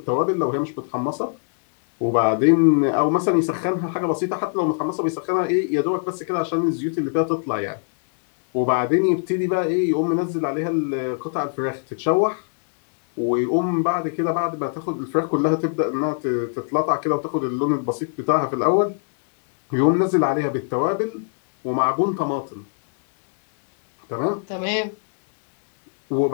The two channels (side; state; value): right; silent; 63 dB below the other